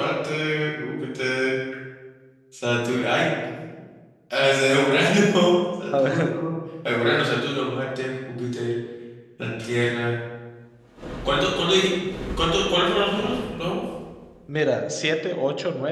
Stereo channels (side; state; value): both; identical; correlation 1.00